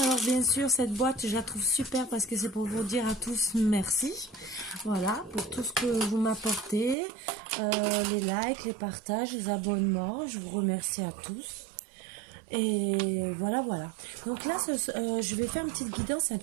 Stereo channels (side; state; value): left; drops out; at 7.0 s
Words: bien sûr cette boîte je la trouve super parce que c'est pour vous dire à tous merci, voilà, pour tout ce que vous m'apportez, les likes, les partages, les abonnements, je vous remercie à tous. Et voilà, voilà. Donc là, je vais faire une petite guidance un